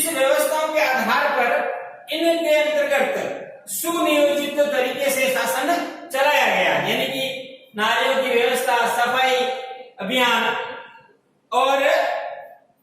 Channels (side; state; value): both; identical; correlation 1.00